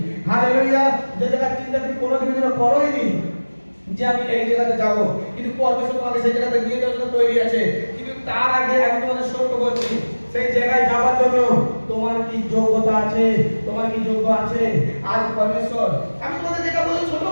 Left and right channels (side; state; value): both; inverted; correlation -1.00